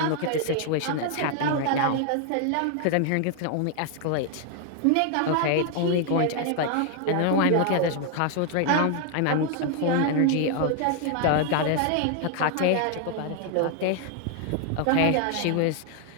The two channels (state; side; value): different; both; correlation 0.00